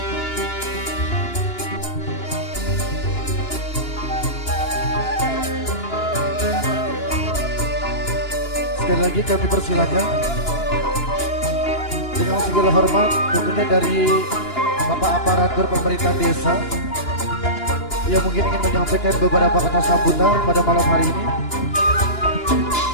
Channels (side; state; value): right; late; 2.9 ms